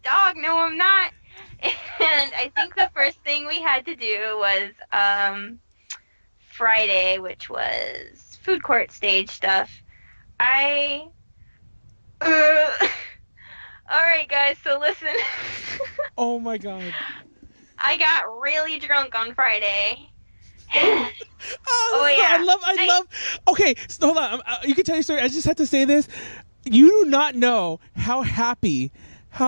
dog? No, I'm not. And I think the first thing we had to do was Friday, which was food court stage stuff. Alright guys, so listen. Oh my god. I got really drunk on Friday. Yeah. I love. Okay, so hold on. You can tell your story. I just have to say this. You do not know how happy,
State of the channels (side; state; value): both; inverted; correlation -1.00